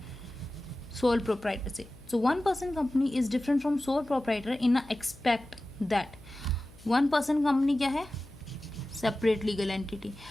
सोल प्रोप्राइटर से? सो 1 person company is different from sole proprietor in a expect that 1 person company क्या है? Separate legal entity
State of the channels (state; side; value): noise; left; hum, 23 dB below the sound